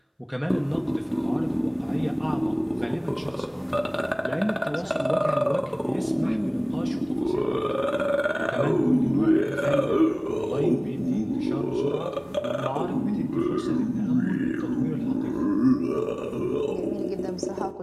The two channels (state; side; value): identical; both; correlation 1.00